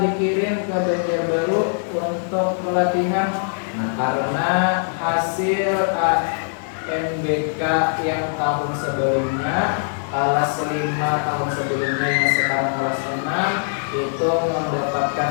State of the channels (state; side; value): silent; right; 60 dB below the other